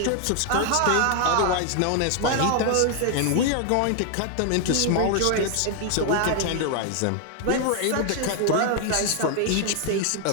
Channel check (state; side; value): different; both; correlation 0.00